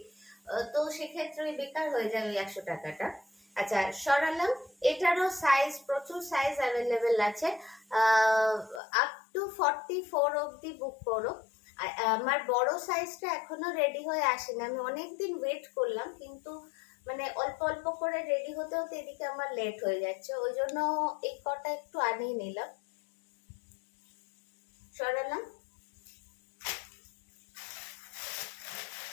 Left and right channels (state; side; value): drops out; right; at 8.8 s